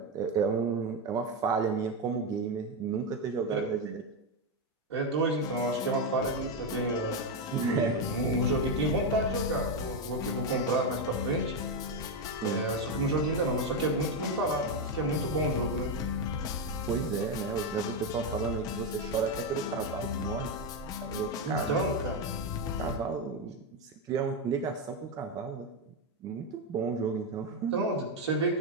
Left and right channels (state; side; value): normal; both; correlation 0.07